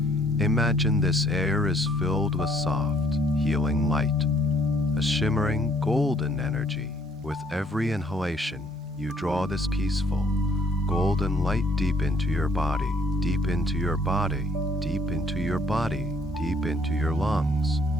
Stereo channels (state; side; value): normal; both; correlation 0.63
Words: Imagine this air is filled with soft, healing light, a shimmering, golden energy. With every inhalation, you draw this peaceful, golden light deep into your body, deep into your body, deep into your body, deep into your lungs.